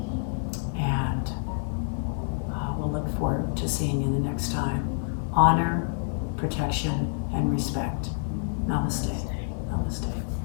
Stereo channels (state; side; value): silent; right; digital silence